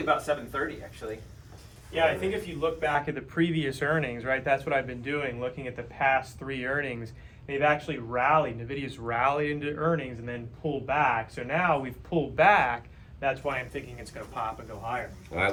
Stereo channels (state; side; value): identical; both; correlation 1.00